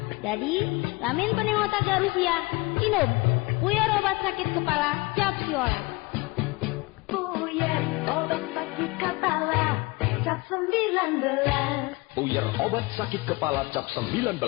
Jadi, lamin pening otak garusia, inom. Puyer obat sakit kepala cap siolas. Puyer obat sakit kepala cap 19. Puyer obat sakit kepala cap 19.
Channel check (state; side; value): quieter; right; 24.4 dB